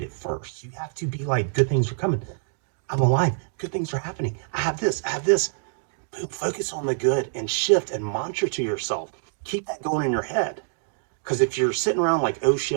it first. You have to be like, good things are coming. I'm alive. Good things are happening. I have this. I have this. Boom, focus on the good and shift and mantra to yourself. Keep that going in your head. Because if you're sitting around like, oh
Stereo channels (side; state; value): left; silent; digital silence